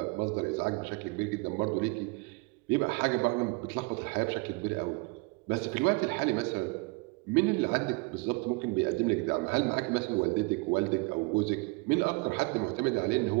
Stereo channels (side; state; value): left; quieter; 27.4 dB